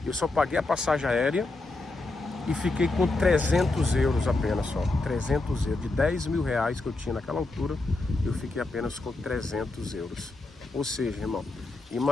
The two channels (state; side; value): quieter; right; 3.1 dB